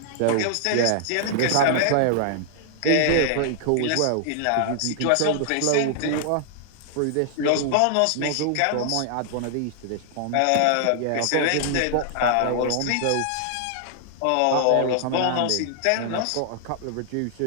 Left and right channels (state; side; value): different; both; correlation -0.01